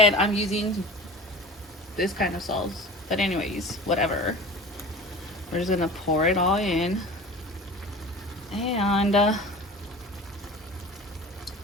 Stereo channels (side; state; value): both; normal; correlation 0.37